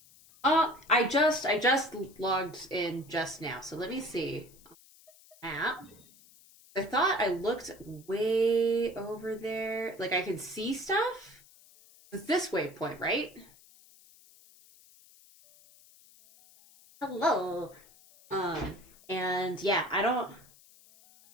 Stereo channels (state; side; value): noise; left; hiss, 25 dB below the sound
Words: I just logged in just now, so let me see. Map. I thought I looked way over there. Like I could see stuff? It's this waypoint, right? Hello. And yeah, I don't